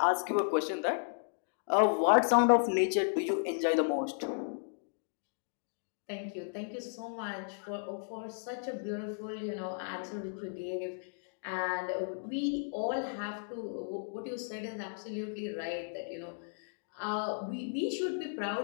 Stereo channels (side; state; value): right; silent; digital silence